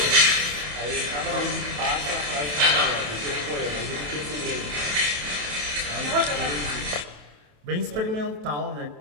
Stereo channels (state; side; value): late; left; 27 ms